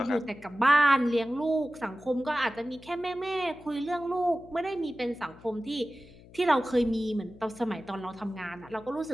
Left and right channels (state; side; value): noise; left; hum, 22 dB below the sound